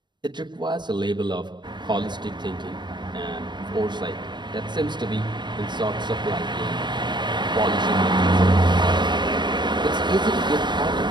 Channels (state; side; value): late; left; 0.22 ms